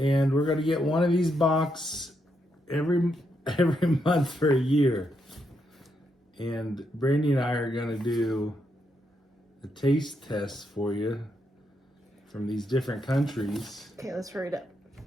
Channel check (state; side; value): normal; both; correlation 0.80